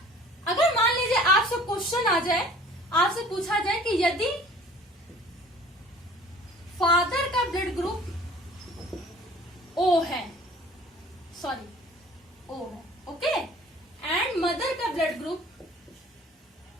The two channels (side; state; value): both; normal; correlation 0.49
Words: अगर मान लीजिए आपसे क्वेश्चन आ जाए, आपसे पूछा जाए कि यदि फादर का ब्लड ग्रुप ओ है, ओके, एंड मदर का ब्लड ग्रुप,